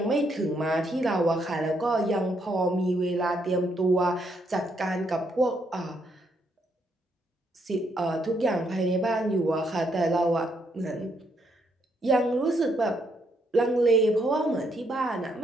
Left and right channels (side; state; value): both; normal; correlation 0.74